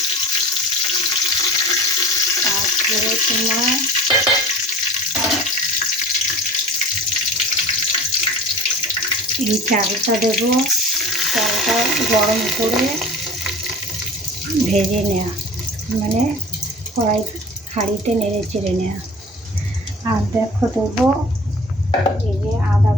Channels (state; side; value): normal; both; correlation 0.40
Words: তারপরে তোমার এই চালটা দেবো, চালটা গরম করে ভেজে নেওয়া, মানে কড়াই হাঁড়িতে নেড়ে চেড়ে নেওয়া। আর দেখো দেবো এই যে আদা